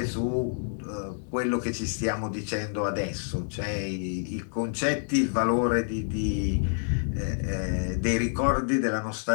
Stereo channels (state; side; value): silent; right; digital silence